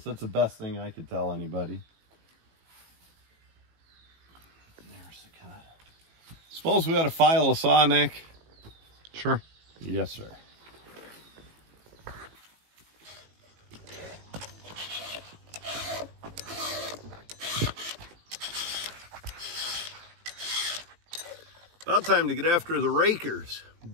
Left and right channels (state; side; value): late; left; 18 ms